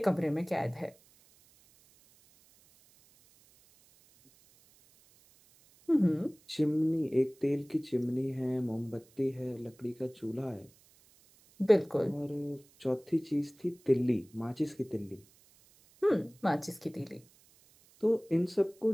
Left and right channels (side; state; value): right; noise; hiss, 29 dB below the sound